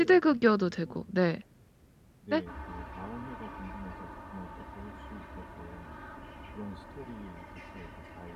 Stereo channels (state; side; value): identical; both; correlation 1.00